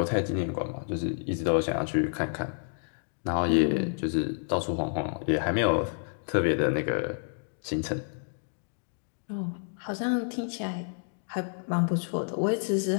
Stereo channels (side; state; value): right; silent; digital silence